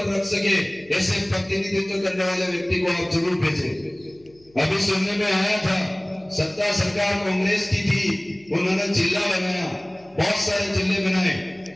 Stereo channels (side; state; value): left; noise; hum, 30 dB below the sound